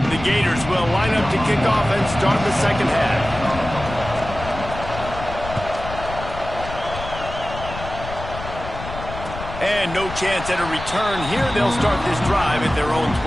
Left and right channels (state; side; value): noise; left; rumble, 10 dB below the sound